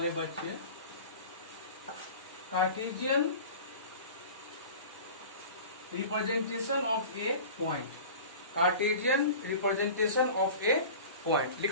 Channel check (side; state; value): both; inverted; correlation -0.38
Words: बच्चे, Cartesian representation of A point, Cartesian representation of A point